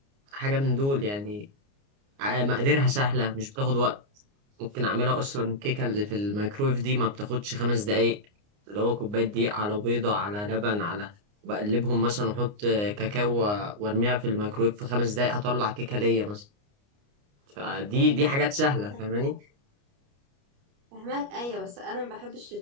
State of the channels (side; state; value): left; late; 29 ms